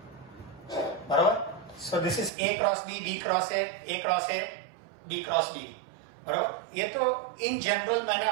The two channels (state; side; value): drops out; left; at 2.3 s